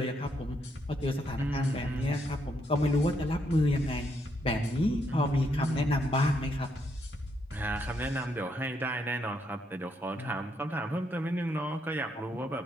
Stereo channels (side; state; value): both; normal; correlation 0.76